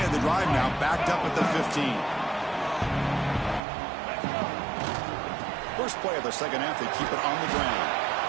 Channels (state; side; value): drops out; left; at 3.6 s